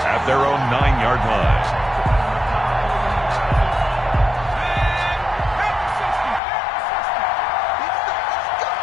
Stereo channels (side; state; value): right; drops out; at 6.4 s